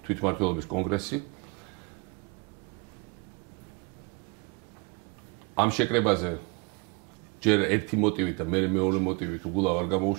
კონგრესი. ამ შეკრებაზე ჯერ ერთი მოტივით და მე მეორე მოტივით უგულავ არ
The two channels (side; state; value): left; quieter; 30.3 dB